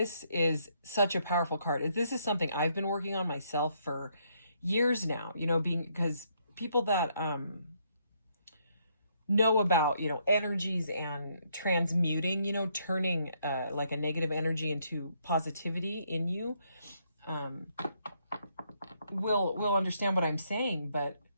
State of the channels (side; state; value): both; inverted; correlation -0.73